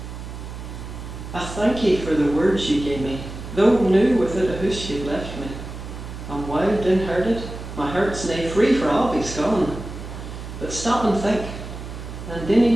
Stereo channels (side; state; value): right; noise; hum, 10 dB below the sound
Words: I thank ye for the words ye gave me, though new with it a hoosh ye left me. I'm wild and herded, my heart's nae free for I'll be gone. But stop and think, and